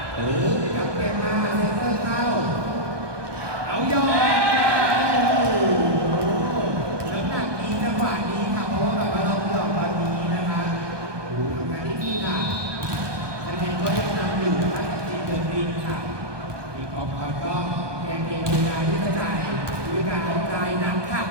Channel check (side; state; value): left; late; 1.2 ms